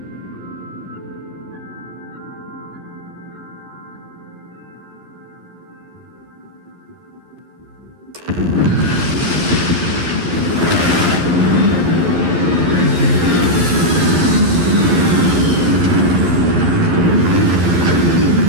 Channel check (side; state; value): left; late; 11 ms